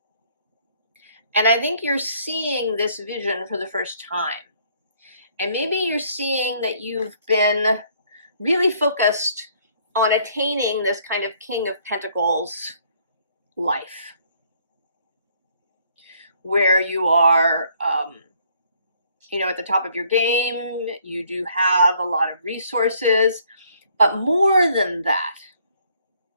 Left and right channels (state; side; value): inverted; both; correlation -0.64